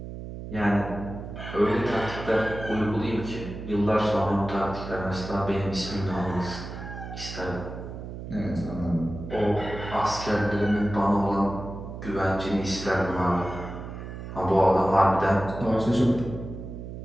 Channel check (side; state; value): right; noise; hum, 9 dB below the sound